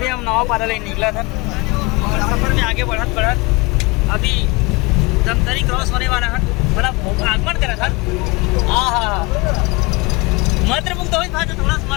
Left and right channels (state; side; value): quieter; right; 25.8 dB